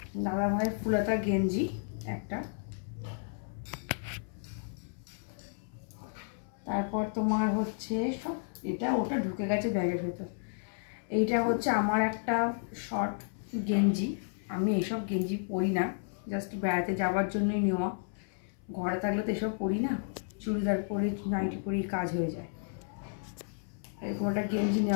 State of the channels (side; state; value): right; silent; 56 dB below the other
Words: দাদা ভাইয়ের ফুলাতা গেঞ্জি একটা। তারপর তোমার হচ্ছে সব এটা ওটা ঢুকে গেছে ব্যাগের ভেতর। এইটা হচ্ছে আমার একটা শর্ট গেঞ্জি। আমি এইসব গেঞ্জি পরি না, জাস্ট বেড়াতে যাওয়ার জন্যই নেওয়া। ঘরে থাকলে তো এসব পরি না, চুড়িদার পরে নাইটি পরেই কাজ হয়ে যায়। এরকম একটা গেঞ্জি